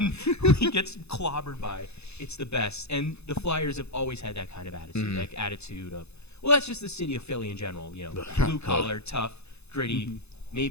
who he gets clobbered by. It's the best. And the Flyers have always had that kind of attitude, like attitude of, well, that's just the city of Philly in general. Blue collar, tough, gritty,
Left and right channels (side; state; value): right; late; 0.80 ms